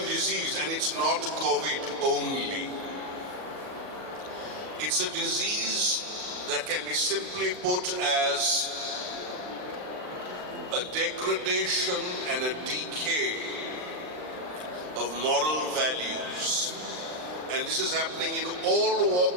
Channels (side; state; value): left; late; 39 ms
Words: disease, and it's not COVID only. It's a disease that can be simply put as a degradation and a decay of moral values. And this is happening in all